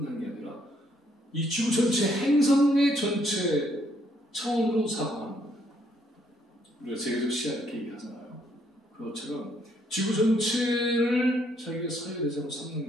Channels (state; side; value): normal; both; correlation 0.70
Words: 게 아니라 이 지구 전체 행성의 전체 차원으로 사고하는 거예요. 우리가 세계적 시야 이렇게 얘기하잖아요. 그것처럼 지구 전체를 자기가 사유 대상으로